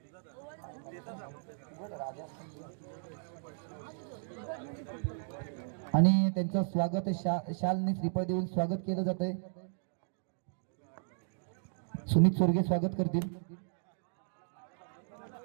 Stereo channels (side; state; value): left; silent; digital silence